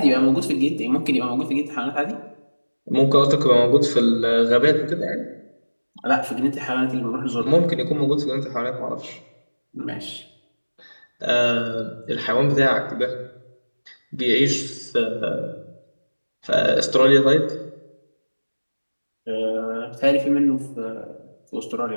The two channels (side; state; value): both; inverted; correlation -1.00